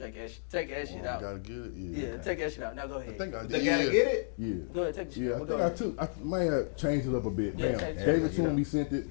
that shit out. Gotta get it. Yeah, take that shit out. Now go ahead. I think I did. They gotta get it? Yeah. Go ahead, take the shit Yeah, out. I Go think ahead. I might have changed it up a bit. Yeah, Bam. change it. Gave it to him, he sent it.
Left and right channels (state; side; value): silent; right; digital silence